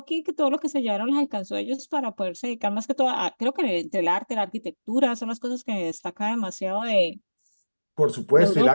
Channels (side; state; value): both; inverted; correlation -1.00